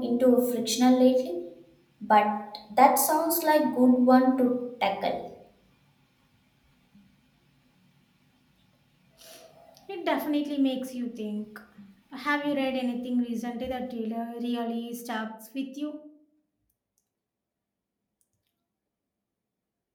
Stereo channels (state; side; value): identical; both; correlation 1.00